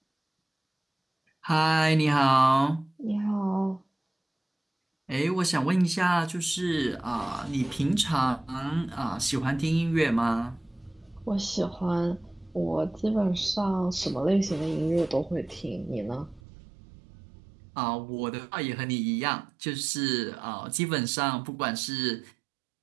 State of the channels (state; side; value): drops out; left; at 16.4 s